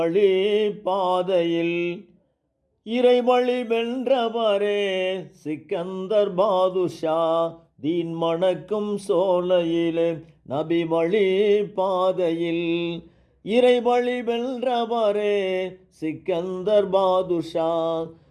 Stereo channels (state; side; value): identical; both; correlation 1.00